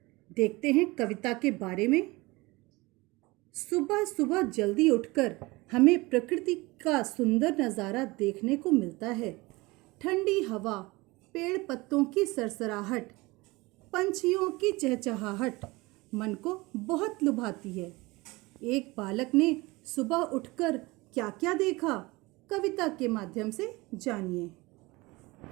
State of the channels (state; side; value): quieter; left; 22.7 dB